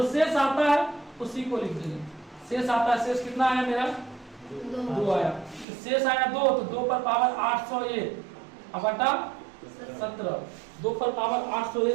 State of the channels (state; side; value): drops out; left; at 5.7 s